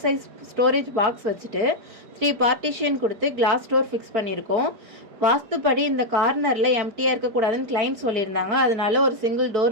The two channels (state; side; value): late; left; 4.8 ms